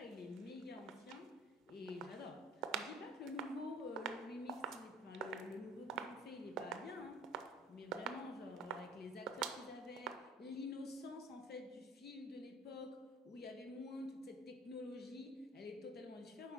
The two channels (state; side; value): normal; both; correlation 0.50